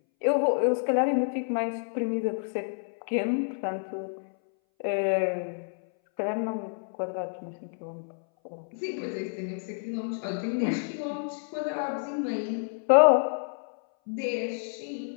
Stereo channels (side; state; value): right; silent; 59 dB below the other